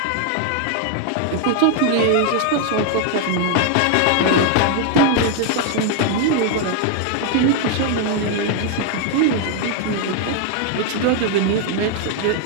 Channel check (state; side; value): different; both; correlation 0.00